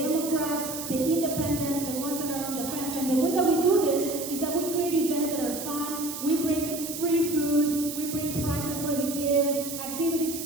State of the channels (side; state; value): right; noise; hiss, 8 dB below the sound